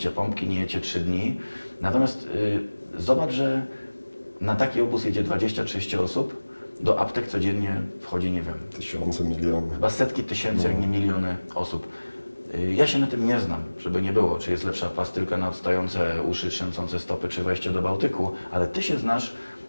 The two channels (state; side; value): inverted; both; correlation -1.00